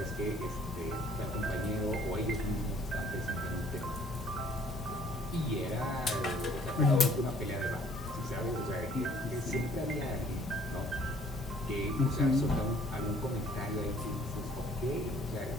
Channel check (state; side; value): normal; both; correlation 0.58